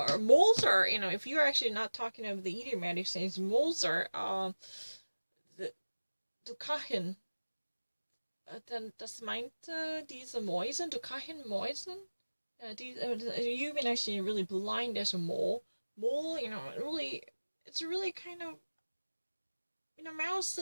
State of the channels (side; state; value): both; inverted; correlation -1.00